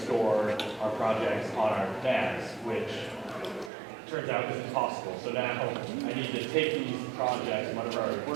our projects on our NAS, which turns out isn't possible. So now I need to take these projects, whenever I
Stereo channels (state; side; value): drops out; left; at 3.7 s